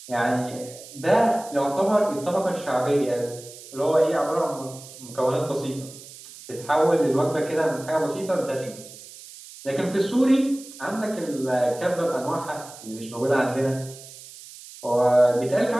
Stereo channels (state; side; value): noise; right; hiss, 17 dB below the sound